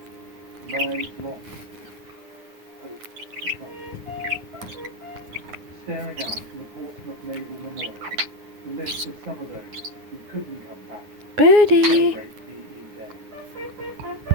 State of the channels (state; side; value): late; left; 9.6 ms